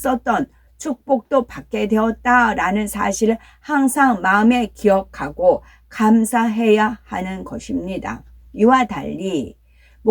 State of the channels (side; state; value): both; identical; correlation 1.00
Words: 축복도 받게 되었다라는 사실을 항상 마음에 기억하고 감사해야 하는 것입니다. 이와 달리